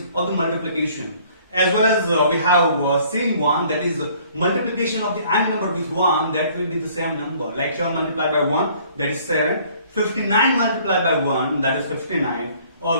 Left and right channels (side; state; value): both; inverted; correlation -0.57